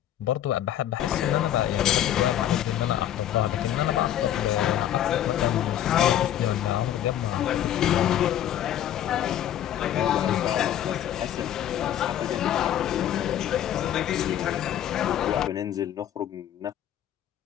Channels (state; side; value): quieter; right; 11.2 dB